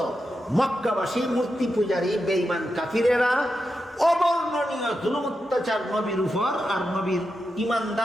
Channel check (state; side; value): normal; both; correlation 0.88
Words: মক্কাবাসী মূর্তি পূজারী বেঈমান কাফিরেরা অবর্ণনীয় জুলুম অত্যাচার নবীর উপর আর নবীর